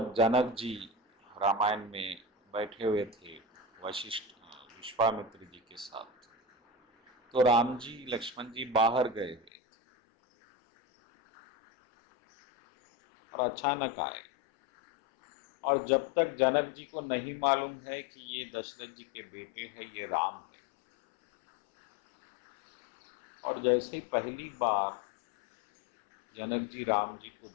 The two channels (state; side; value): drops out; right; at 9.5 s